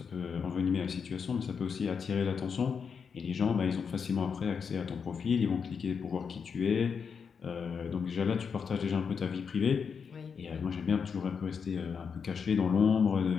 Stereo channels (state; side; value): quieter; right; 6.2 dB